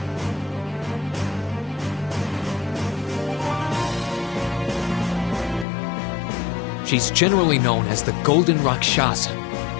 she's generally known as the Golden Rakshasa.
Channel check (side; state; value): right; drops out; at 5.7 s